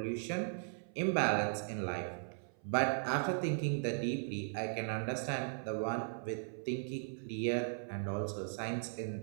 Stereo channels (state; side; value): silent; left; 53 dB below the other